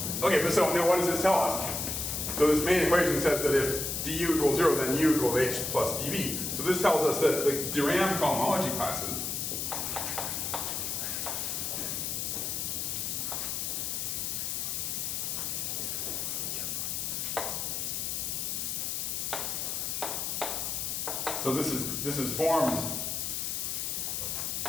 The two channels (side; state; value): left; noise; hiss, 1 dB below the sound